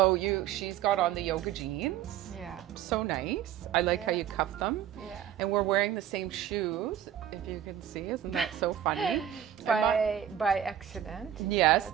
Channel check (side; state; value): left; quieter; 10.5 dB